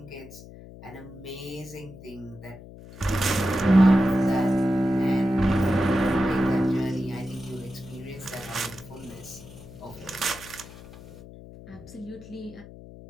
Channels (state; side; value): noise; left; hum, 17 dB below the sound